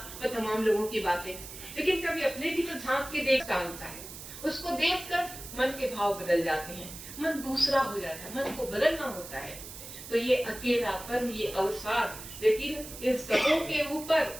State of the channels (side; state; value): right; noise; hiss, 12 dB below the sound